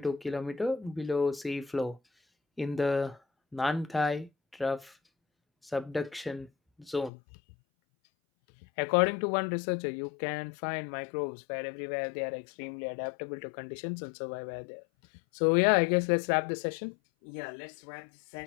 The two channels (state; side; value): drops out; right; at 7.1 s